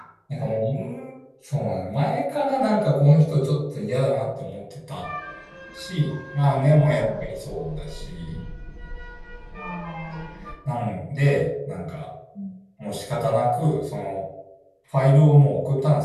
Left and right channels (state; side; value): identical; both; correlation 1.00